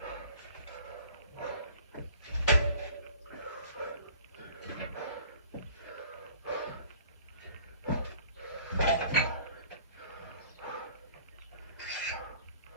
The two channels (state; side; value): inverted; both; correlation -0.50